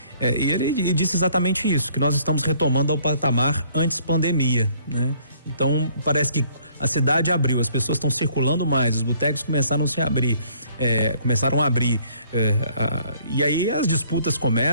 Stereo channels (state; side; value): inverted; both; correlation -0.61